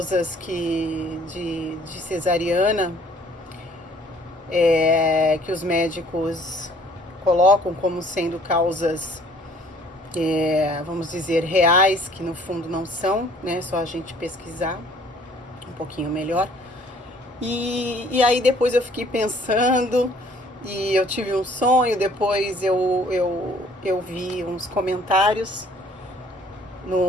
de cesariana, que os médicos colocam como sendo causas, vamos dizer, reais, que no fundo não são, né? Só a gente pesquisar um pouquinho melhor. E aí depois eu fiquei pensando, e eu tive um sonho. Depois eu vi uns comentários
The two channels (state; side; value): normal; both; correlation 0.57